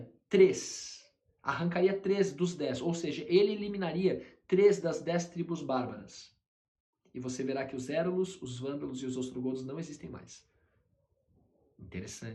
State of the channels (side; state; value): both; identical; correlation 1.00